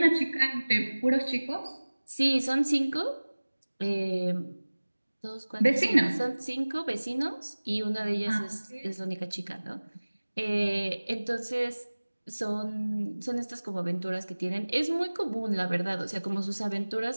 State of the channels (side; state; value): both; inverted; correlation -1.00